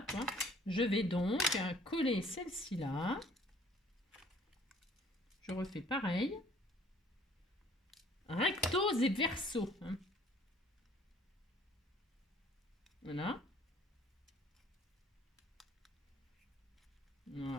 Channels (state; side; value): normal; both; correlation 0.56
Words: toi. Je vais donc coller celle-ci là. Je refais pareil. Rectos et verso. Hein. Voilà.